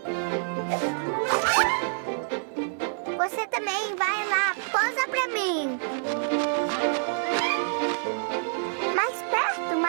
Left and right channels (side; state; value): left; silent; digital silence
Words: Você também vai lá, posa pra mim. Mais perto,